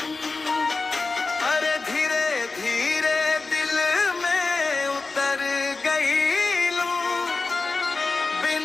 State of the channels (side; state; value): right; quieter; 3.8 dB